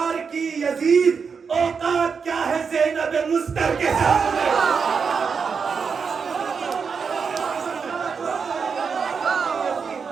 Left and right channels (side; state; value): left; quieter; 5.8 dB